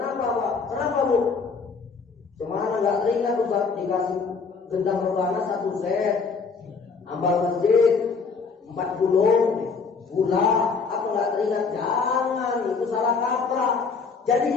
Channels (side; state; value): right; quieter; 5.0 dB